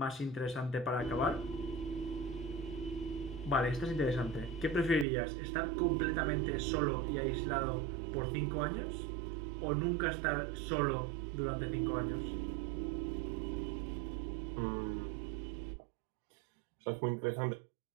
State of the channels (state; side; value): drops out; left; at 5.1 s